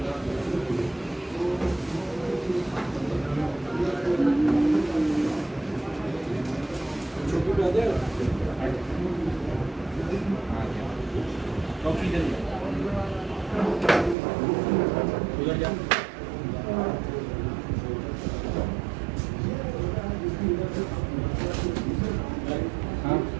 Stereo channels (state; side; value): drops out; left; at 14.2 s